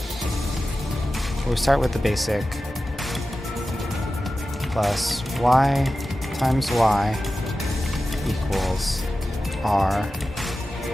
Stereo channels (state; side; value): normal; both; correlation 0.94